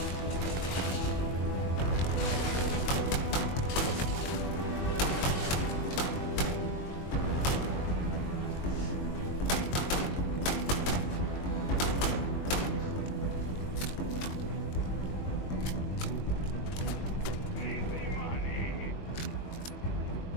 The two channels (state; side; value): late; right; 22 ms